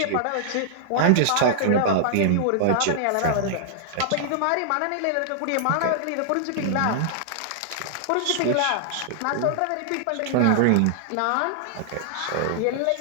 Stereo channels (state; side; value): different; both; correlation -0.01